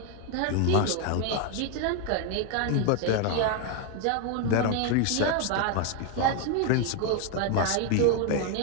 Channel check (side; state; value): both; different; correlation 0.01